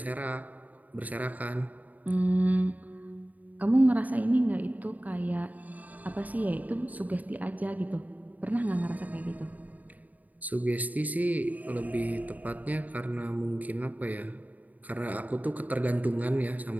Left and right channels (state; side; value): late; left; 0.077 ms